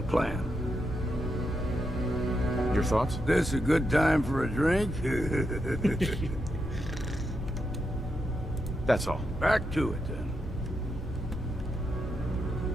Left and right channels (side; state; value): both; normal; correlation 0.84